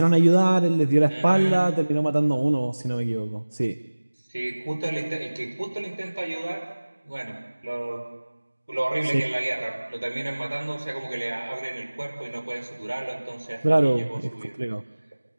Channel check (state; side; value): inverted; both; correlation -1.00